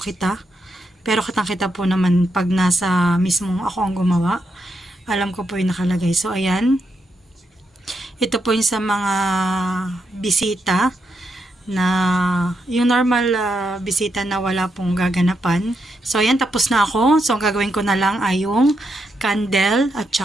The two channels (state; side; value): normal; both; correlation 0.82